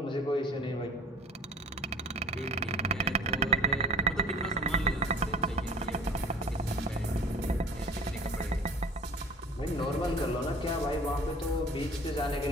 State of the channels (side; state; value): both; normal; correlation 0.45